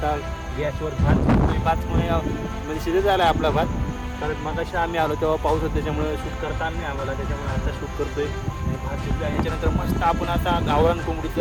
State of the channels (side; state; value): both; identical; correlation 1.00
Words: गॅसवर भात शिजतोय. भातमुळे म्हणजे शिजत झाला आहे आपला भात. कारण मग अशा आम्ही आलो तेव्हा पाऊस होता, त्याच्यामुळे शूट करता आलं नाही आम्हाला. त्याच्यामुळे आता शूट करतोय. आणि भात शिजला. याच्यानंतर मस्त आपण आता गावरान